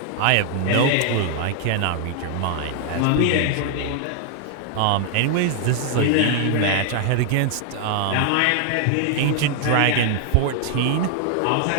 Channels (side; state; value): both; different; correlation 0.00